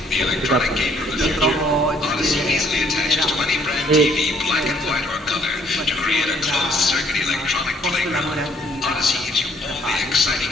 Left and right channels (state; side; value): normal; both; correlation 0.64